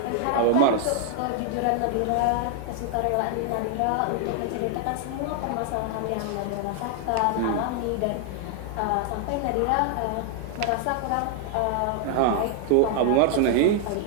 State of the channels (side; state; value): both; different; correlation 0.00